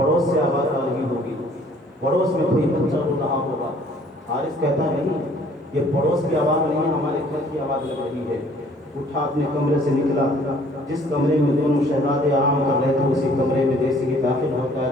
سے آواز آ رہی ہوگی, پڑوس میں کوئی بچہ رو رہا ہوگا. حارث کہتا ہے نہیں, یہ پڑوس کی آواز نہیں ہے, ہمارے گھر کی آواز لگ رہی ہے. اٹھا اپنے کمرے سے نکلا. جس کمرے میں دونوں شہزادے آرام کر رہے تھے اسی کمرے میں جیسے ہی داخل ہوتا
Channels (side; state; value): both; normal; correlation 0.57